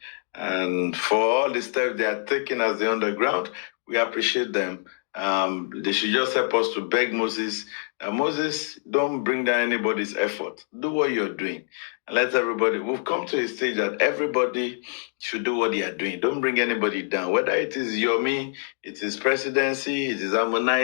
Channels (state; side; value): silent; right; digital silence